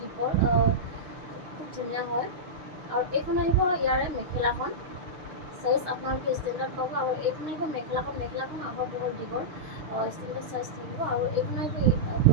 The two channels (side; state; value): left; late; 6.3 ms